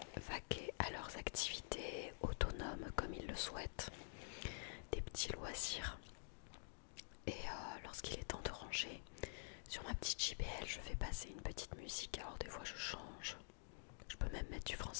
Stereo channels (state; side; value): silent; right; digital silence